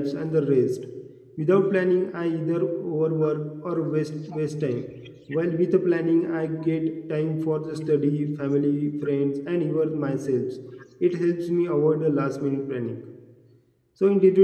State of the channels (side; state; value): both; identical; correlation 1.00